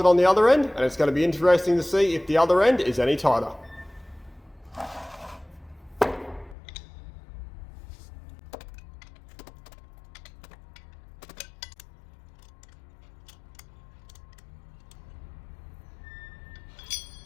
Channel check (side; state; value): right; drops out; at 6.6 s